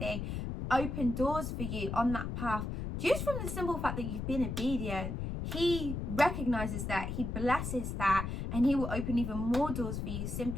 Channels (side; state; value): left; noise; rumble, 4 dB below the sound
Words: open doors for you on that path. Just from the simple fact that you've been obedient, He recognizes that, He blesses that, and He will open even more doors for you